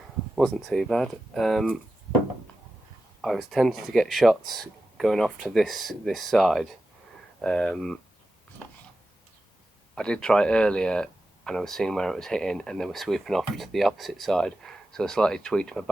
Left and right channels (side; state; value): both; normal; correlation 0.92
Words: Wasn't too bad. I was tempted to get shots going off to this side. I did try earlier, and I was seeing where it was hitting, and they were sweeping off to the opposite side. So I slightly tweaked my